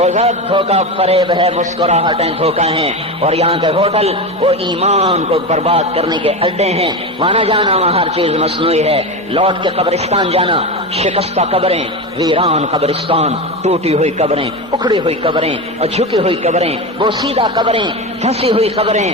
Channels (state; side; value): normal; both; correlation 0.20